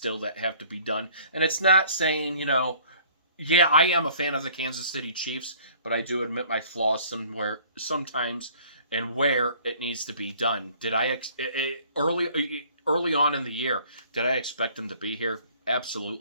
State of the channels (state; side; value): inverted; both; correlation -0.54